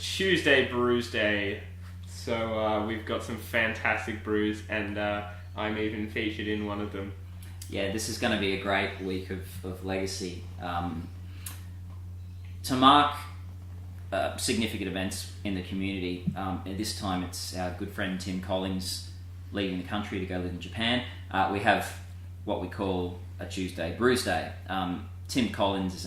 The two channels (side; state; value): both; identical; correlation 1.00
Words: Brewsday. So we've got some fantastic brews, and I'm even featured in one of them. Yeah, this is going to be a great week of legacy. To mark significant events in the community, this time it's our good friend Tim Collins leaving the country to go live in Japan. We have what we call a Tuesday Brewsday. Tim Collins is